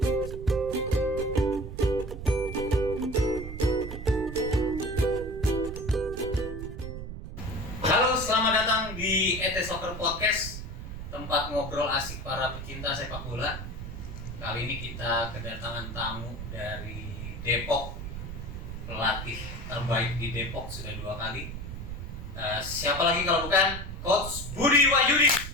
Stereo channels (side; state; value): right; noise; rumble, 8 dB below the sound